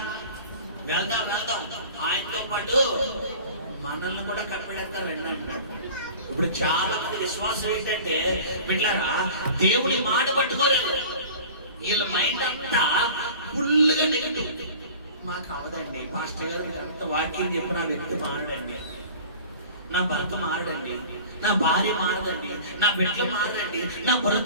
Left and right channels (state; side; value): inverted; both; correlation -0.41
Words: వెళ్దాం వెళ్దాం, ఆయనతో పాటు మనల్ని కూడా కనిపెడతారు అన్నాడు. ఇప్పుడు చాలా మంది విశ్వాసం ఏంటంటే పిల్లరా, దేవుని మాట పట్టుకోలేదు, వీళ్ళ మైండ్ అంతా ఫుల్ గా నెగటివ్. మాకు అవదండి పాస్టర్ గారు అంత వాక్యం చెప్పి నా వ్యక్తి మారడండి, నా భర్త మారడండి, నా భార్య మారదండి, నా బిడ్డలు మారదండి, నా